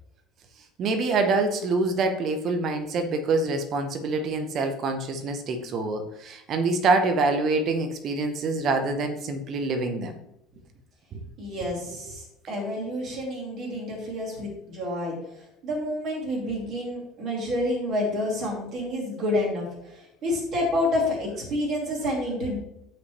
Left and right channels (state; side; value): normal; both; correlation 0.47